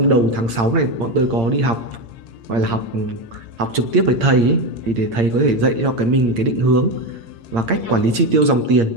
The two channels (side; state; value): left; late; 8.7 ms